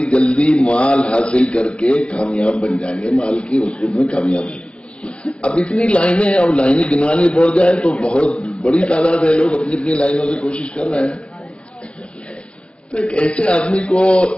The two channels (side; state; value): right; late; 0.058 ms